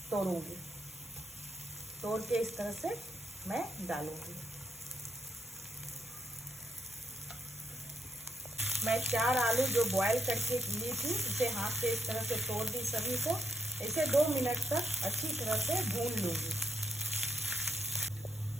तोड़ूंगी, तोड़ के इस तरह से मैं डालूंगी। मैं 4 आलू जो बॉईल करके ली थी इसे हाथ से इस तरह से तोड़ दी सभी को। इसे 2 मिनट तक अच्छी तरह से भून लूँगी।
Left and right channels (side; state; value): both; normal; correlation 0.79